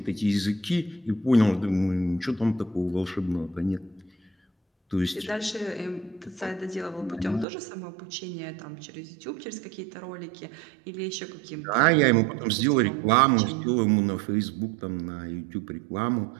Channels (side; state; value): left; drops out; at 7.5 s